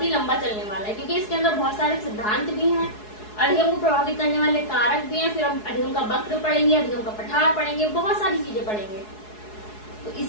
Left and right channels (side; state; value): right; late; 4.7 ms